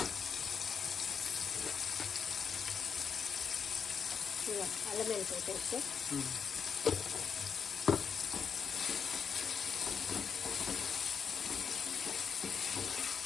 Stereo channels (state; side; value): quieter; right; 6.6 dB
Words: అల్లం వెల్లిపాయ పేస్ట్,